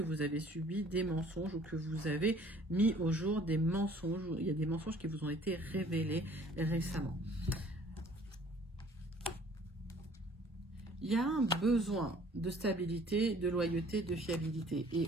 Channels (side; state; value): both; normal; correlation 0.54